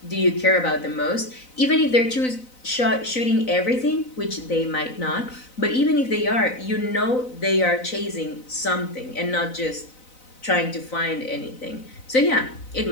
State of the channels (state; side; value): late; right; 4.0 ms